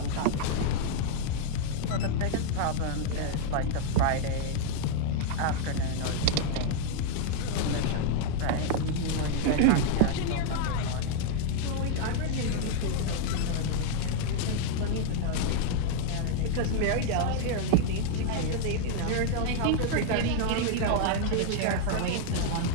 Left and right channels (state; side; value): different; both; correlation 0.00